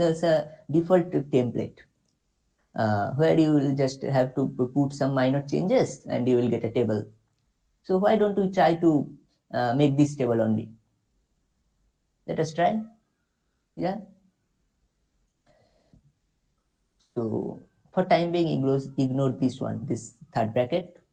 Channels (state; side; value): identical; both; correlation 1.00